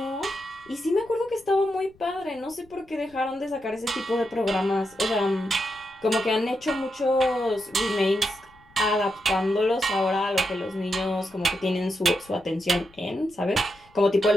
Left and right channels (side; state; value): left; noise; rumble, 29 dB below the sound